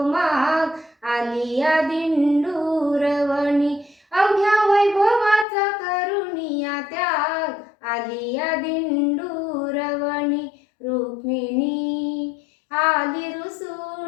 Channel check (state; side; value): drops out; right; at 5.5 s